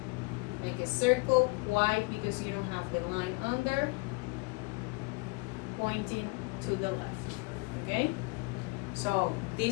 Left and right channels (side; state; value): right; quieter; 28.2 dB